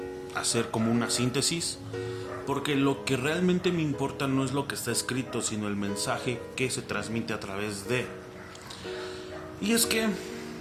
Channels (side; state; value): both; identical; correlation 1.00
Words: hacer como una síntesis, porque lo que realmente me importa no es lo que está escrito, sino el mensaje que se transmite a través de. Y es que